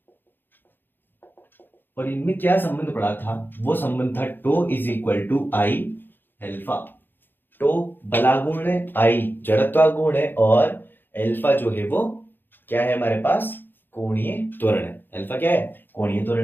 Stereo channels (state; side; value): late; right; 0.096 ms